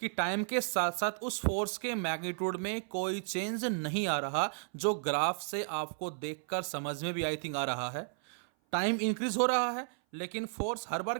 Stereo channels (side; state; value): left; silent; 55 dB below the other